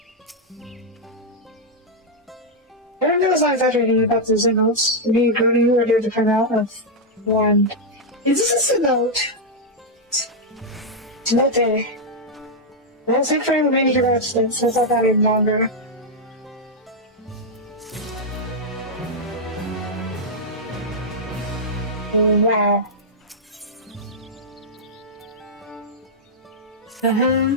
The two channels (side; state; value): both; normal; correlation -0.03